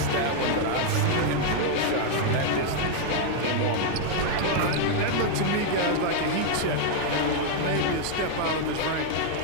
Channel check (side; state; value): both; different; correlation 0.00